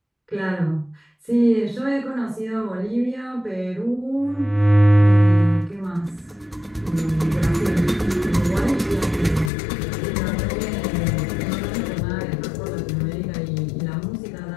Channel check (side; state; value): right; drops out; at 9.5 s